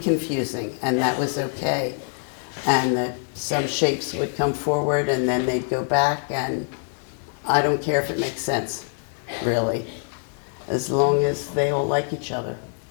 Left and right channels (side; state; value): right; silent; 62 dB below the other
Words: and that was okay. And that some shapes would come forward and then they'd go back, and I don't care if it makes sense, really, as long as they all like each other.